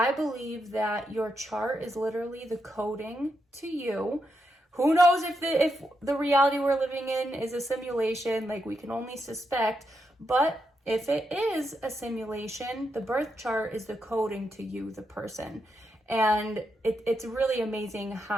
believe that your chart is literally the coding to you. Who knows if the reality we're living in is a simulation, like we can only suspect, but if it is a simulation, the birth chart is the coding to you, the person. And it's really amazing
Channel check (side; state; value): both; normal; correlation 0.83